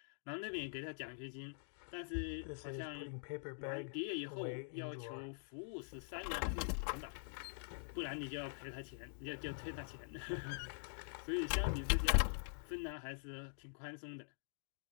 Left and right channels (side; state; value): right; silent; digital silence